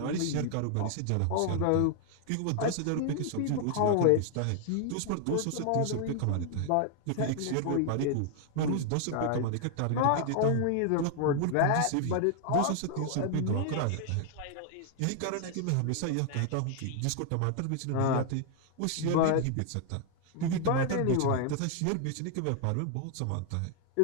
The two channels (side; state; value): both; different; correlation 0.00